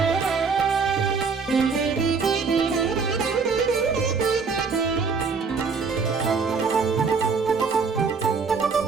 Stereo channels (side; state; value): left; quieter; 5.1 dB